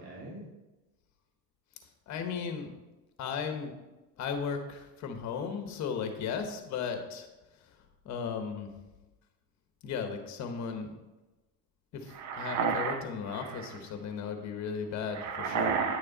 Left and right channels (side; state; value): both; normal; correlation 0.06